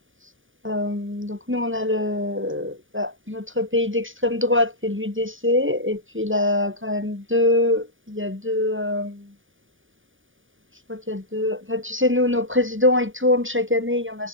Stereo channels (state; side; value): late; left; 0.57 ms